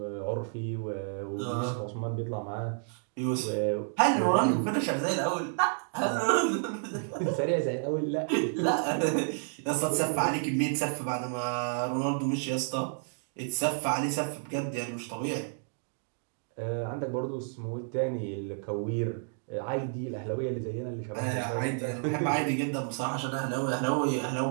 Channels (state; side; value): silent; left; digital silence